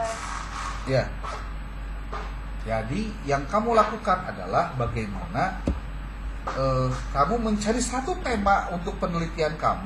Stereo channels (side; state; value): both; identical; correlation 1.00